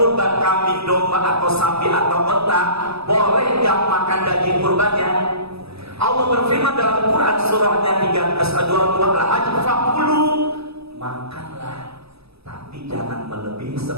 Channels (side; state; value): left; late; 0.78 ms